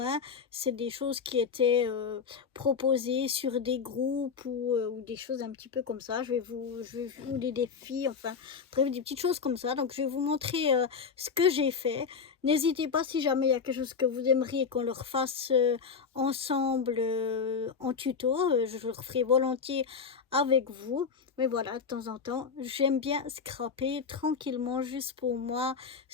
C'est des choses qui étaient proposées sur des groupes ou des choses un petit peu comme ça, ou des défis, enfin, bref, des petites choses comme ça. Donc je vais vous montrer ce que j'ai fait. N'hésitez pas si jamais il y a quelque chose que vous aimeriez qu'on leur fasse ensemble en tuto, je le referai volontiers avec vous. Mais voilà, de temps en temps, j'aime bien scraper tranquillement juste pour moi,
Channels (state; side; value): quieter; right; 5.8 dB